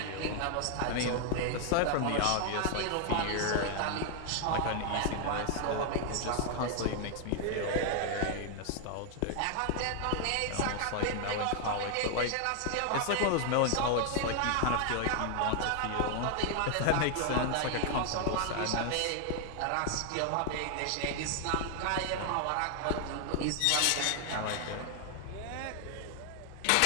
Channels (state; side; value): different; both; correlation 0.00